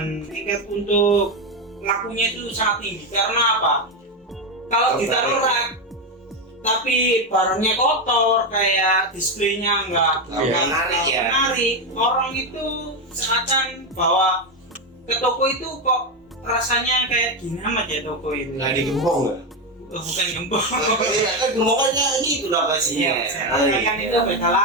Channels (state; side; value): normal; both; correlation 0.10